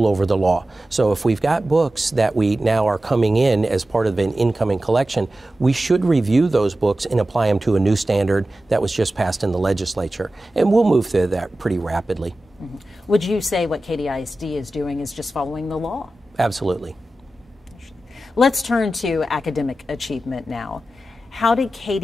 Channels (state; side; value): normal; both; correlation 0.94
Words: over the law. So if we've got books that we now are coming in as part of an incoming collection, we should review those books and apply them to a new standard that was just passed in the legislature. And we'll move through that pretty rapidly. Mm-hmm. Would you say what KDISD is doing is just following the law? Absolutely. Let's turn to academic achievement now. How did